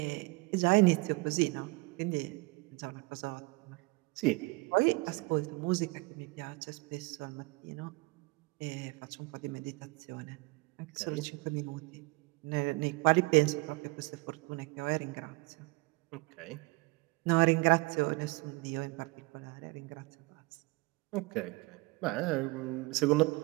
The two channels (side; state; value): left; quieter; 25.0 dB